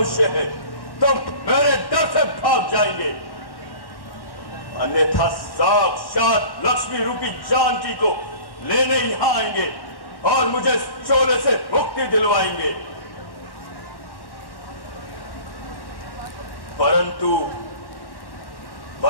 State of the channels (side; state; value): right; late; 1.1 ms